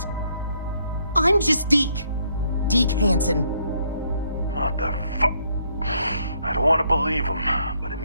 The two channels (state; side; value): inverted; both; correlation -0.71